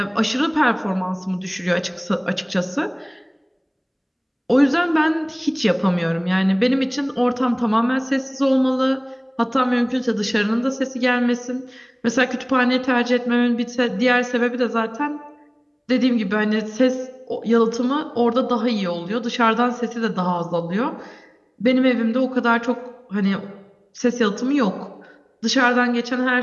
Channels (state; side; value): identical; both; correlation 1.00